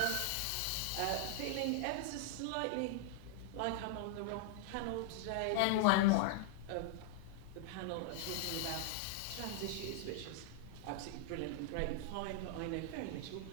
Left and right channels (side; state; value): both; different; correlation 0.00